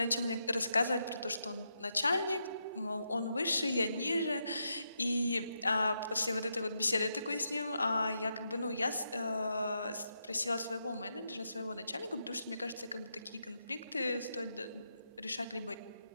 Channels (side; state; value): both; inverted; correlation -0.83